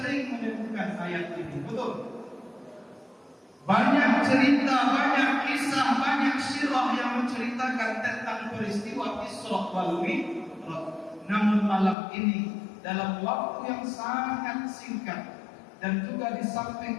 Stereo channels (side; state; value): right; drops out; at 12.0 s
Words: menemukan ayat ini. Betul? Banyak cerita, banyak kisah, banyak sirah yang menceritakan tentang peristiwa Isra wal Mi'raj. Namun malam ini dalam waktu yang sangat singkat dan juga di